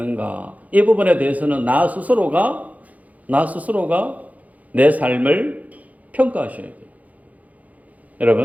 이 부분에 대해서는 나 스스로가 내 삶을 평가하셔야 돼요.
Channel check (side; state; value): left; late; 0.075 ms